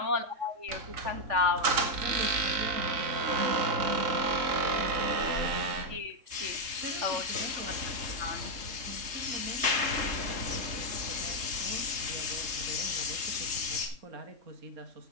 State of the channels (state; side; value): late; left; 3.7 ms